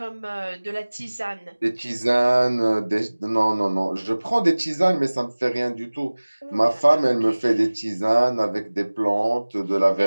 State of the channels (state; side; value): inverted; both; correlation -1.00